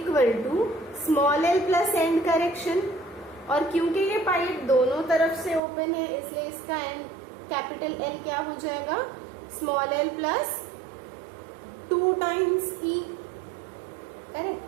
to small l plus and correction. और क्योंकि ये पाइप दोनों तरफ से ओपन है इसलिए इसका एंड कैपिटल L क्या हो जाएगा, small l plus 2 times E, correct.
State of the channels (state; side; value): drops out; left; at 5.6 s